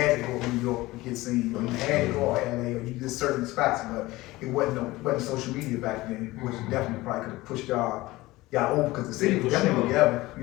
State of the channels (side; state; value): right; quieter; 19.3 dB